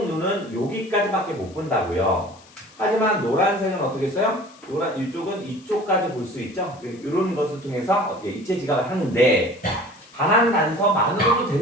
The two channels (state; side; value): noise; left; hiss, 25 dB below the sound